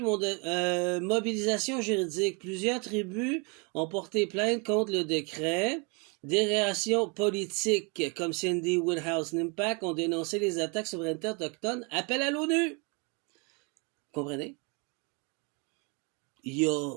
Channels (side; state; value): left; quieter; 32.5 dB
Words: mobilisation juridique. Plusieurs tribus ont porté plainte contre le décret. Des réactions politiques comme Cindy Woodhouse Nimpak ont dénoncé les attaques souveraineté autochtone. Appel à l'ONU. Comprenez? Il a